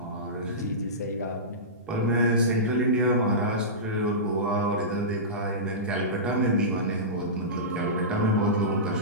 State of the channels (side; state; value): both; normal; correlation -0.18